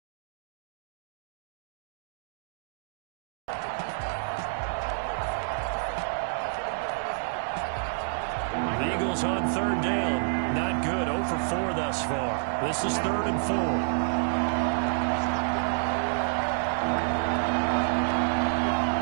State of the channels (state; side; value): silent; left; digital silence